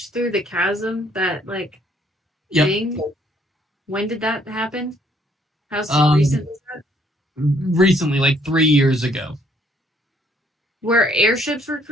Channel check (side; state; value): both; normal; correlation 0.65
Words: through the chasm, that Yep. thing, when did that happen? How recent was that? Recently, like 3 years ago. Where airships were